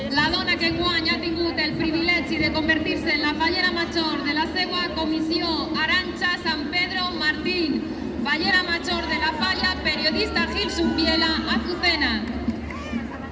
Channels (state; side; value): identical; both; correlation 1.00